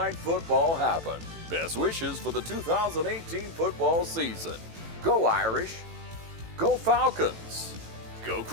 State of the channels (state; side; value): late; left; 18 ms